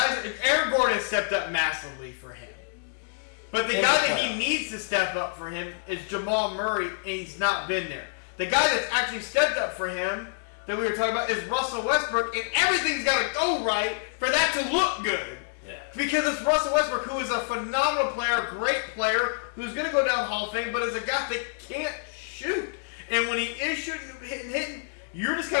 Aaron Gordon has stepped up massively for him, but the guy that he needs to step up for him is Jamal Murray, and he's not been there. The guy that's actually stepped up for him that we were talking about is Russell Westbrook, and everything's got to go right for that to look good. Yeah. Because it's Russell Westbrook, who is a phenomenal player, great player, who's going to go down Hall of Fame, but is a guy that can't shoot. And when he is shooting, hitting, you're just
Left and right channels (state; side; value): silent; right; digital silence